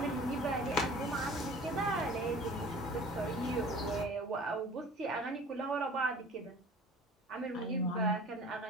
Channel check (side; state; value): both; normal; correlation 0.45